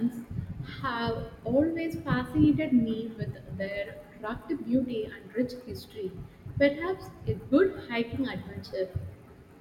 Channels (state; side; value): identical; both; correlation 1.00